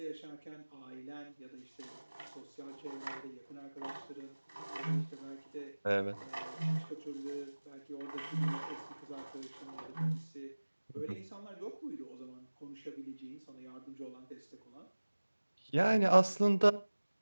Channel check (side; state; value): both; inverted; correlation -1.00